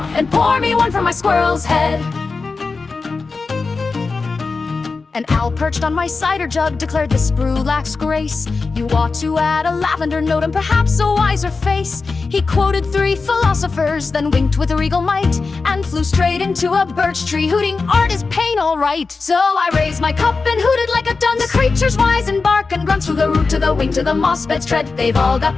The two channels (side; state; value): right; quieter; 4.2 dB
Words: and pour me one from my squirrel's head. An owl perched on my cider jug declared this brew lacks grace. You ought to add a lavender note and perhaps a wiser face. He quoted 3 philosophers, then winked with a regal might, and flew straight into a birch tree, hooting, "Art is pain, all right." So I raised my cup and hooted like a dun. The creatures wise and bark and grunt, from the root to the wing to the moss bed's tread. They've all